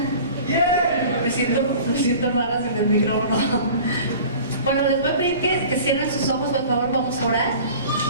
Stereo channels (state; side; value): inverted; both; correlation -0.42